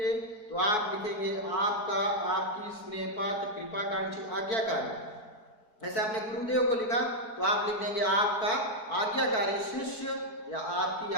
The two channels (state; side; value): late; right; 4.5 ms